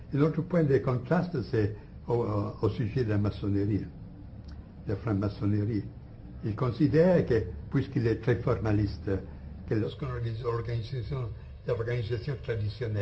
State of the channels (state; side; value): identical; both; correlation 1.00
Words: Et l'autre point de contraste, c'est au sujet de la maçonnerie, de la franc-maçonnerie. Il considère que, puisqu'il est très formaliste, que lorsqu'on organise l'organisation